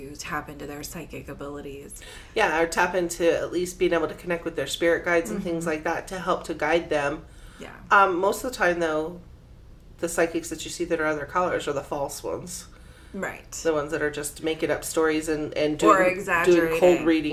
tap into their psychic abilities. Yeah, or tap into at least being able to connect with their spirit guides and things like that to help to guide them. Yeah. Most of the time, though, the psychics that you see that are other colors are the false ones. Right. The ones that are just making up stories and doing cold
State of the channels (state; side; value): identical; both; correlation 1.00